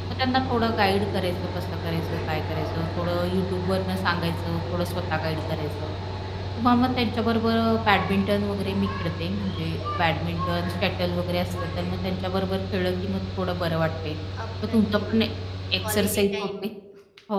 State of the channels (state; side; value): identical; both; correlation 1.00